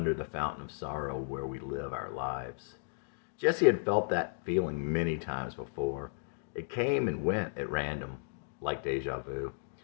the fountain of sorrow where we live our lives. Jesse had felt that feeling many times before. It came and went at random, like deja vu.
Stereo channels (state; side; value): silent; right; digital silence